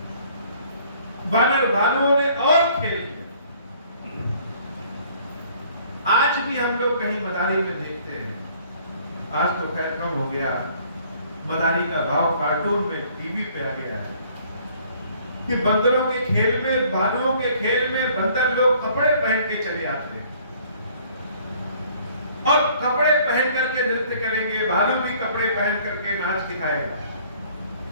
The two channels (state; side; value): inverted; both; correlation -0.58